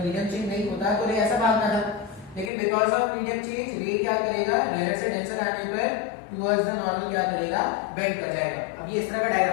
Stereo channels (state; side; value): drops out; right; at 2.5 s